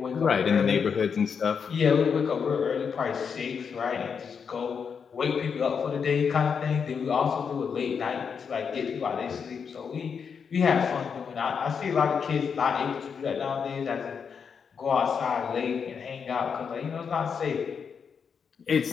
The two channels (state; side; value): quieter; right; 6.4 dB